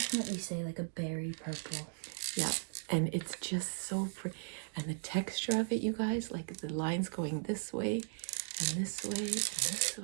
say like a berry purple. Yeah, and it's just so pretty. And the texture of it, you guys, like the lines going this way and this way and this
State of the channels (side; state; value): left; silent; digital silence